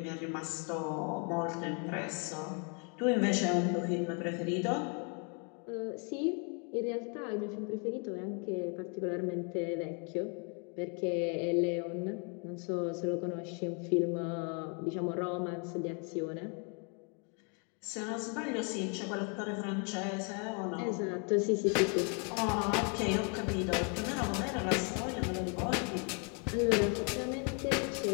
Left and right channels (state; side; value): quieter; right; 37.3 dB